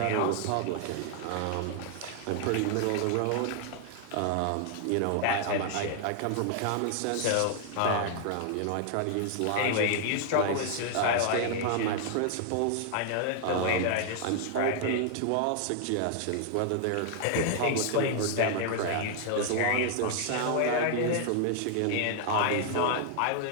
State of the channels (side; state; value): both; different; correlation 0.00